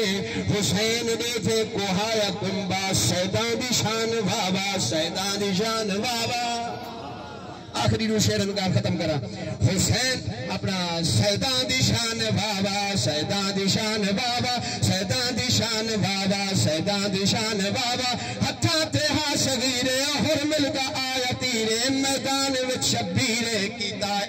دے تھے کوہایا کنبا سیدان دی شان بابا سیدان دی شان بابا آخری رو شیرن کا ختم کرا حسین اپنا سیدان دی شان بابا سیدان دی شان بابا سیدان دی شان بابا سیدان دی شان بابا ہتھا تے ہا صغیرے ہر ملکا آیا تیرے میدان وچ شبیرے کیتا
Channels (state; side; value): identical; both; correlation 1.00